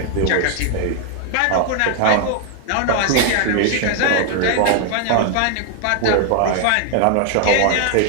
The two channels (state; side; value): different; both; correlation 0.00